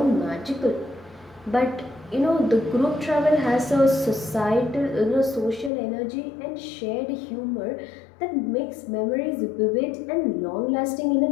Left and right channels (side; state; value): right; drops out; at 5.7 s